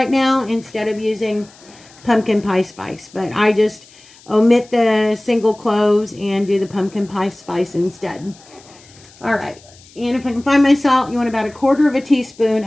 now instead of using pumpkin pie spice. But I just omit the single cloves and do the pumpkin pie spice instead. All right. And if I can find my salt, you want about a quarter of a teaspoon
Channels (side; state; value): left; noise; hiss, 25 dB below the sound